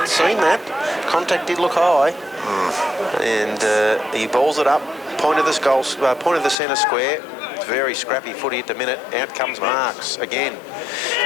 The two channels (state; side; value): drops out; right; at 6.6 s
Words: seen that. Contact did look high. And he balls it up. Point of the centre square. It's very scrappy footy at the minute. Out comes Marks again.